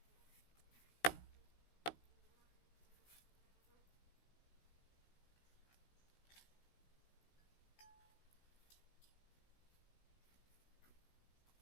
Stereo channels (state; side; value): late; right; 16 ms